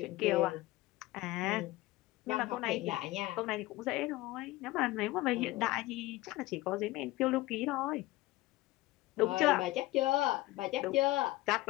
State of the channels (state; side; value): quieter; right; 18.4 dB